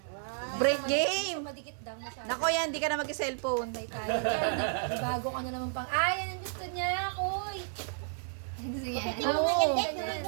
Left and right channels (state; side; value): silent; left; 56 dB below the other